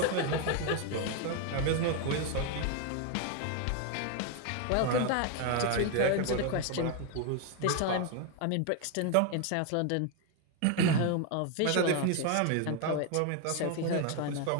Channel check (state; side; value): different; both; correlation 0.01